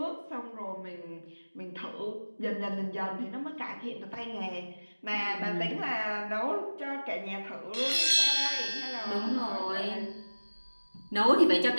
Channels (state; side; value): inverted; both; correlation -1.00